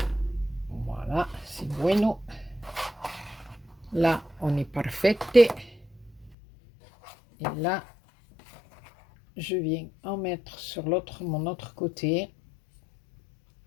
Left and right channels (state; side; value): drops out; right; at 6.4 s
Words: bueno. Là, on est parfaite. Et là, je viens en mettre sur mon autre côté.